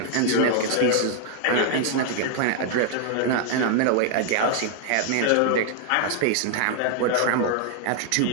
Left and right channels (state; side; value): different; both; correlation 0.00